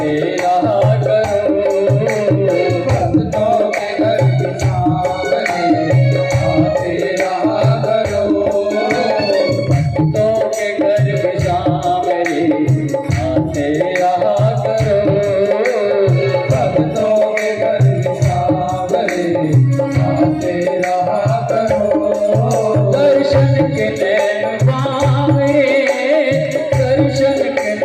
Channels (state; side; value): identical; both; correlation 1.00